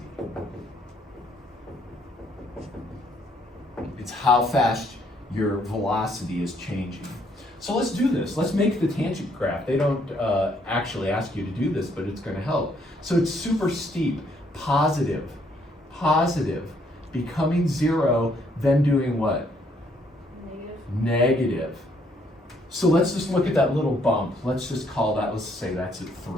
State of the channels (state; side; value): normal; both; correlation 0.69